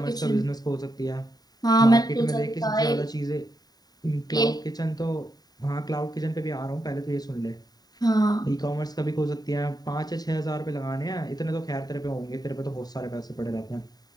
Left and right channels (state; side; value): late; right; 0.19 ms